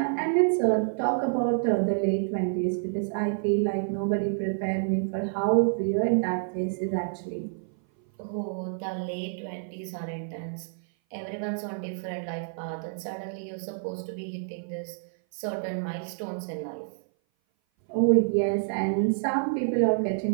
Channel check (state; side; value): silent; left; 57 dB below the other